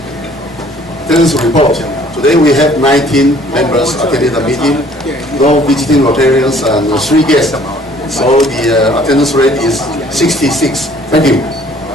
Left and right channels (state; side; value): normal; both; correlation 0.57